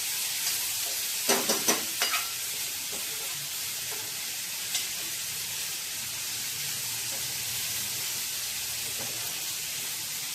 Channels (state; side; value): identical; both; correlation 1.00